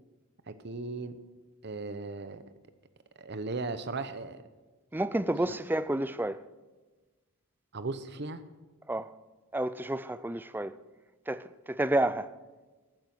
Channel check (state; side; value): normal; both; correlation 0.72